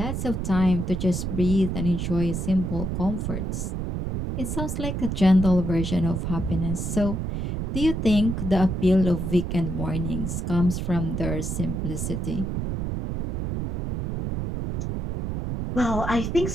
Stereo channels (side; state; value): right; noise; rumble, 3 dB below the sound